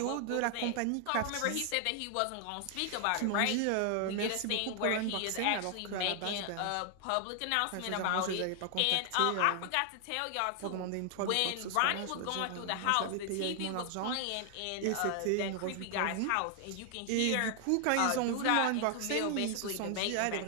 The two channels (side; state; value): both; different; correlation 0.00